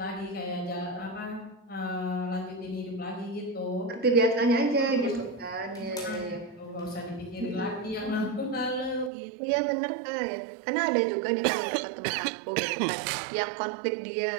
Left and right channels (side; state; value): left; drops out; at 9.1 s